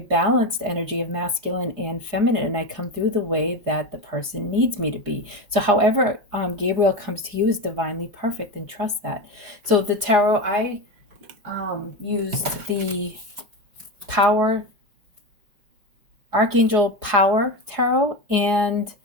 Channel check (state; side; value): late; left; 4.8 ms